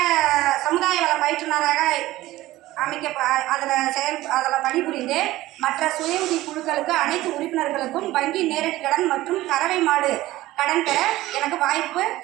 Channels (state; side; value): quieter; left; 16.7 dB